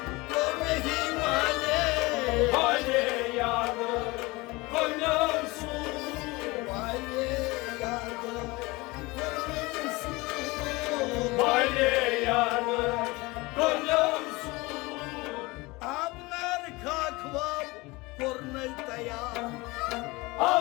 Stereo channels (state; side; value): quieter; right; 23.1 dB